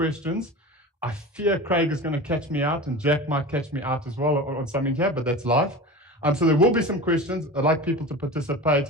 I fear Craig is going to catch me out, and Jack might catch me out as well on something here, but that's life. So there will be some questions. I'd like people to participate,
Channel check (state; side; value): normal; both; correlation 0.31